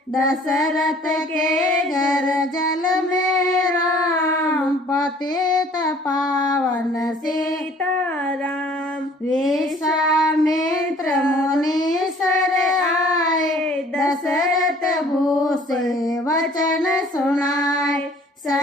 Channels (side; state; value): both; normal; correlation 0.54